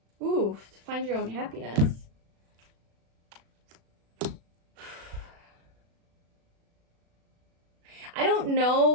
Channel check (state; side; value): late; left; 36 ms